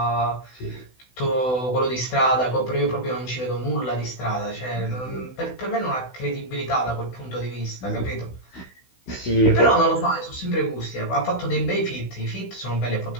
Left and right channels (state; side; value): late; right; 16 ms